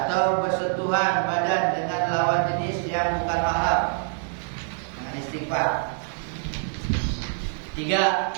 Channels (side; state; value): left; silent; 59 dB below the other